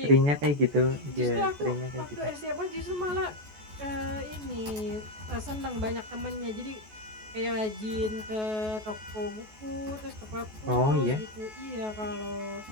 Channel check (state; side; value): late; left; 14 ms